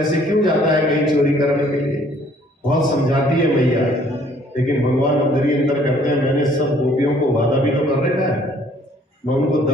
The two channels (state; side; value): normal; both; correlation 0.60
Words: क्यों जाता है कहीं चोरी करने के लिए? बहुत समझाती है मैया, लेकिन भगवान अंदर ही अंदर करते हैं, मैंने सब गोपियों को वादा भी तो कर रखा है, मैं उनको